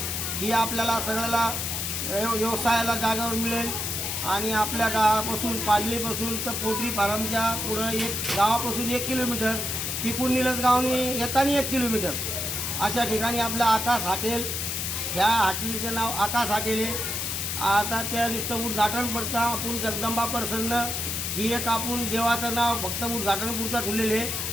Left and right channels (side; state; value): left; noise; hiss, 2 dB below the sound